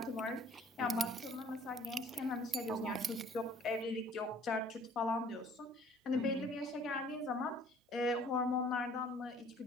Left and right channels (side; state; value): both; normal; correlation 0.55